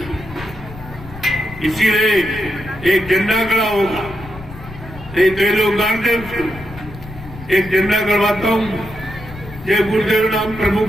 इसीलिए एक झंडा खड़ा होगा, एक दे लोग गाड़ दे उसको, एक झंडा करवाता हूँ जय गुरुदेव नाम प्रभु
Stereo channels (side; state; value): left; noise; rumble, 15 dB below the sound